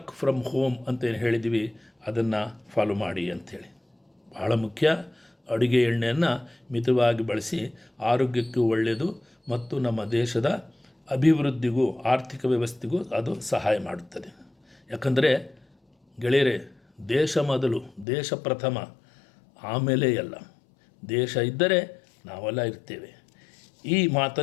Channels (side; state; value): right; drops out; at 18.1 s